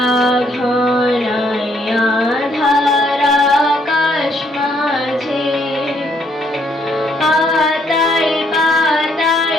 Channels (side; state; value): both; normal; correlation 0.70